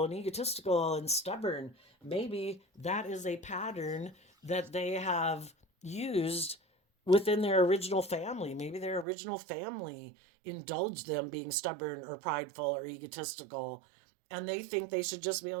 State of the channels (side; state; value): left; drops out; at 9.1 s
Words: and egotistical and stubborn. Maybe that is a pattern that they have used within their original family. Maybe their original family indulged them being stubborn or prideful or egotistical, and they think they should just be